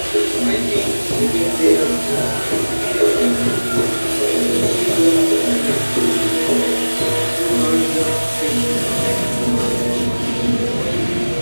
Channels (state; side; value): inverted; both; correlation -1.00